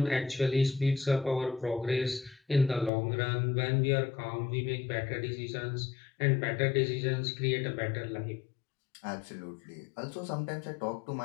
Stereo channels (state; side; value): drops out; right; at 2.9 s